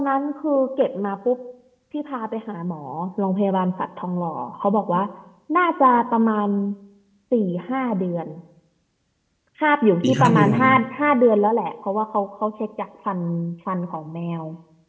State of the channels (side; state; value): both; identical; correlation 1.00